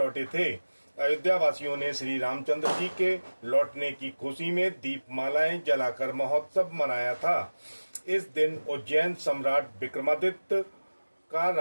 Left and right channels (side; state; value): both; inverted; correlation -1.00